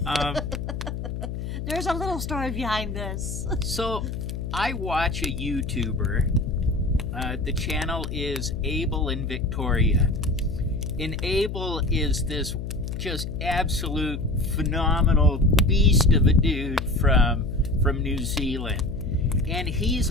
There's a little story behind this. So I watch a YouTuber. The channel is Abel and Victoria. And Abel is this just absolute phenomenal beast of a dude from New Zealand. And he's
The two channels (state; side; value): noise; left; hum, 5 dB below the sound